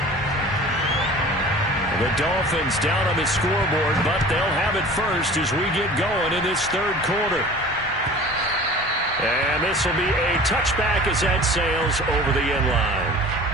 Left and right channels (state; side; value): normal; both; correlation 0.42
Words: The Dolphins down on the scoreboard, but they'll have it first as we get going in this third quarter. And this will be a touchback as that sails over the end line.